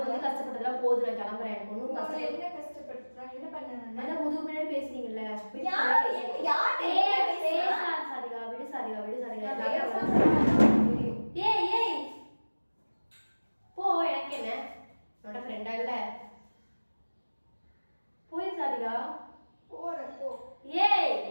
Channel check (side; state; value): both; inverted; correlation -1.00